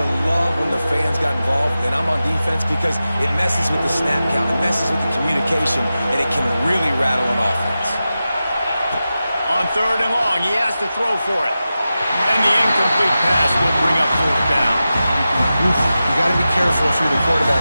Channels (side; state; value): both; inverted; correlation -0.93